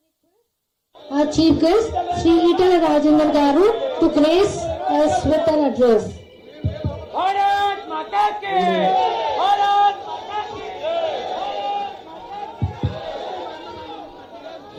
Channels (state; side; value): identical; both; correlation 1.00